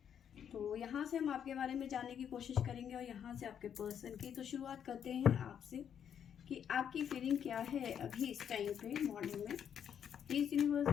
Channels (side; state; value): right; quieter; 8.6 dB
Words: तो यहाँ से हम आपके बारे में जानने की कोशिश करेंगे और यहाँ से आपके पर्सन की। तो शुरुआत करते हैं आपसे कि आपकी फीलिंग क्या है अभी इस टाइम पे मॉर्निंग में। प्लीज़ यूनिवर्स